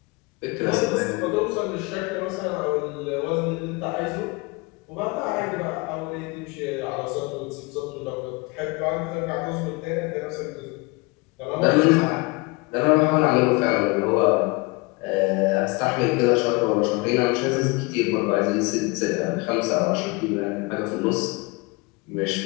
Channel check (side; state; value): right; quieter; 26.3 dB